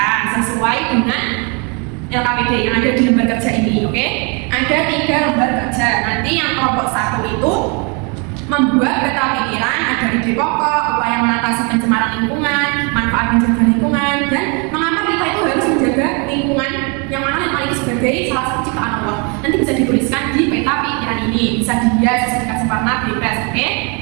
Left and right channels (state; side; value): quieter; left; 33.2 dB